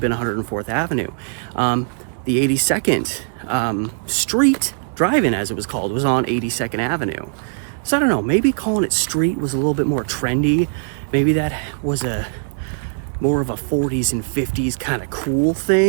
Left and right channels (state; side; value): silent; left; digital silence